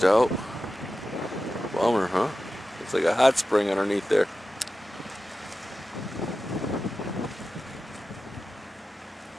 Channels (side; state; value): both; normal; correlation 0.93